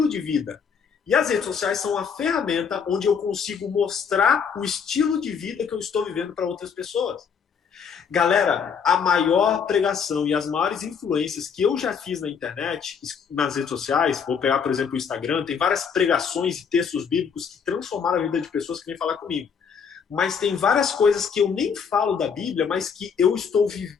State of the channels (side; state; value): right; quieter; 6.6 dB